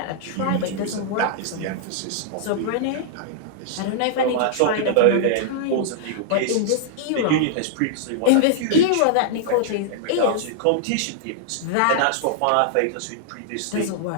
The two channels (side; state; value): both; different; correlation -0.01